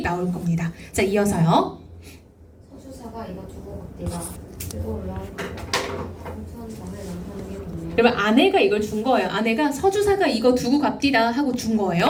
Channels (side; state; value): both; identical; correlation 1.00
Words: 나올 겁니다. 자, 이어서요. 서주사가 이거 두고 내가 들고 올라온 공천장을 남편에게 보내요. 여러분 아내가 이걸 준 거예요. 아내가 서주사가 이거 두고 갑디다 하고 준